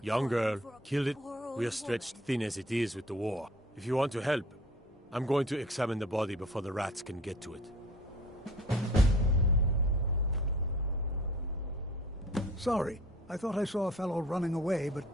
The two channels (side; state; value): both; normal; correlation 0.48